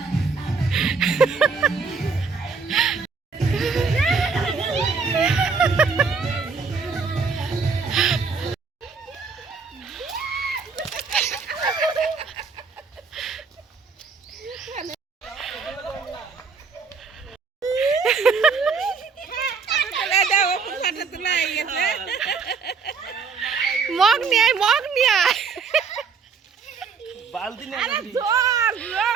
মগ নিয়ে আয়, মগ নিয়ে আয়।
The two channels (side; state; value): left; quieter; 5.1 dB